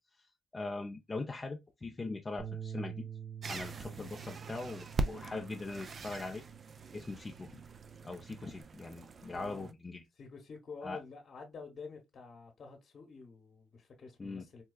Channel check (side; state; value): both; normal; correlation 0.80